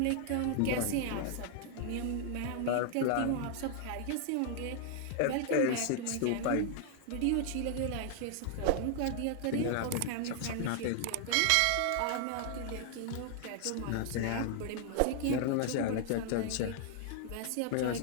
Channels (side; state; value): both; different; correlation 0.00